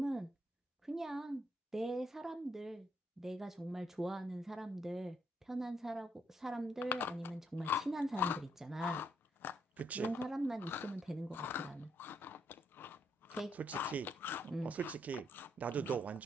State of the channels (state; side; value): normal; both; correlation 0.75